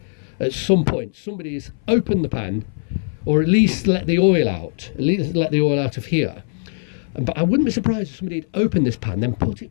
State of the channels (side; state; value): right; silent; 61 dB below the other